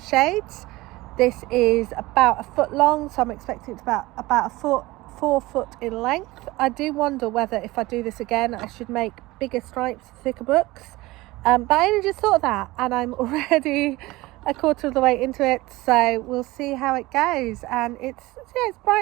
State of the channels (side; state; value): left; quieter; 19.9 dB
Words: shades. This is about a foot long, so I'm expecting it to about a foot, 4 foot in length. I do wonder whether if I do this again, I should make bigger stripes, thicker books. But I only just thought of that, and I'm already a quarter of the way into it, so we'll see how it goes. And it's